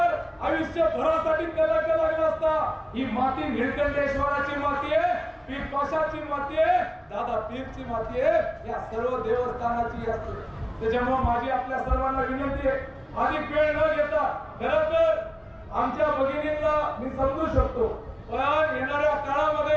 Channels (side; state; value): both; identical; correlation 1.00